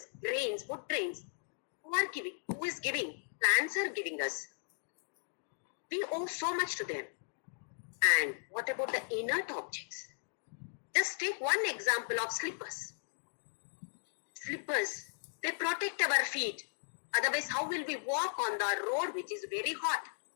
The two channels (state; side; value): silent; right; digital silence